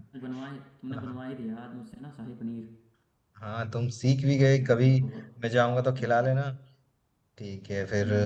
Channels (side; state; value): both; identical; correlation 1.00